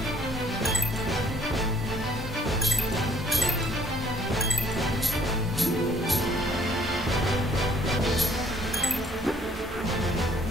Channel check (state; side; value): normal; both; correlation 0.61